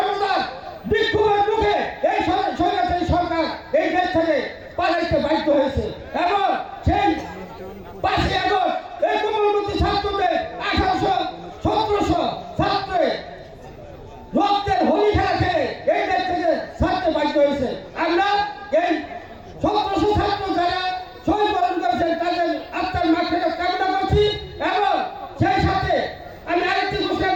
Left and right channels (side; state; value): both; identical; correlation 1.00